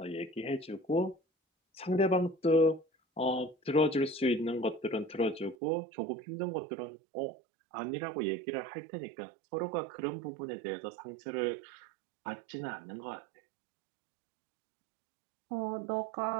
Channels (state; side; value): drops out; left; at 5.6 s